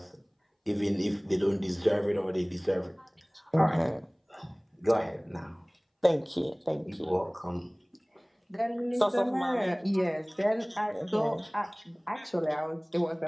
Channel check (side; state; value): both; identical; correlation 1.00